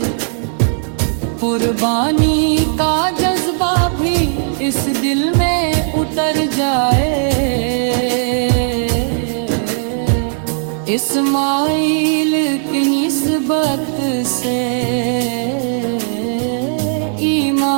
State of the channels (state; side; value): silent; left; digital silence